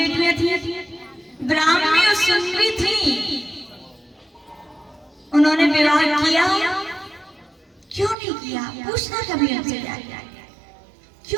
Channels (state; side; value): drops out; left; at 8.2 s